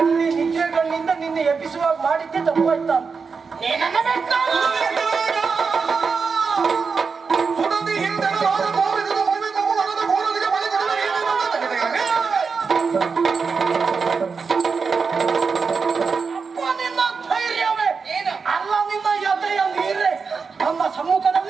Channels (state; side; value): quieter; left; 5.2 dB